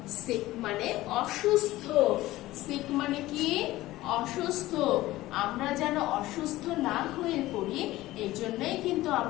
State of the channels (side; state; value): right; quieter; 17.0 dB